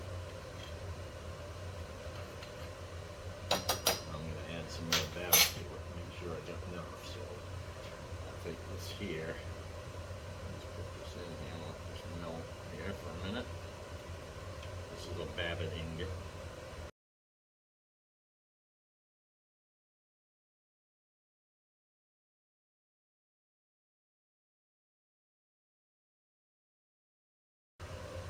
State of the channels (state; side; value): identical; both; correlation 1.00